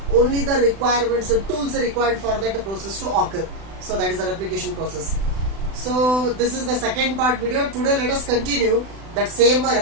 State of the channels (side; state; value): left; late; 36 ms